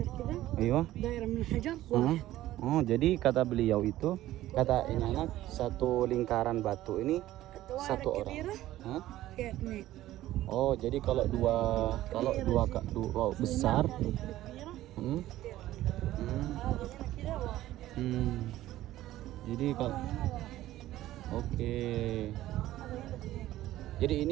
كذا Iya. دائرة من الحجر واحد. Oh, jadi kata beliau itu, kata ini anak, satu lingkaran batu ini satu orang. كبيرة Hah? فيها اثنين. Oh, jadi kalau dua besar. هذه كبيرة Hmm? Hmm. هذه هنا كذا واحد. Jadi kalau هنا واحد. oke. هذا هنا اثنين. Jadi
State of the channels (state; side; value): quieter; left; 14.8 dB